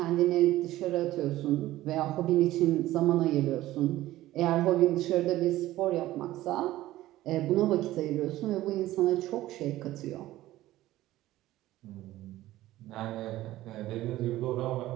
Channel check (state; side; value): quieter; left; 15.6 dB